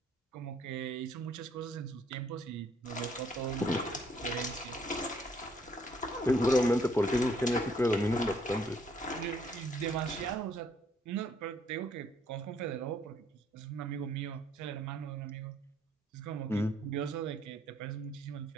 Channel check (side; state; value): both; normal; correlation 0.66